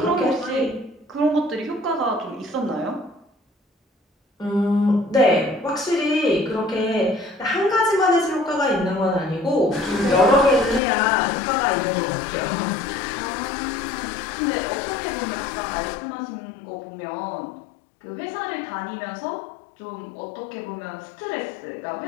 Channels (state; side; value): drops out; right; at 10.8 s